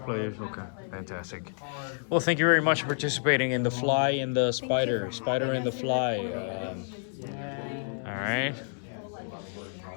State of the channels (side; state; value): right; silent; digital silence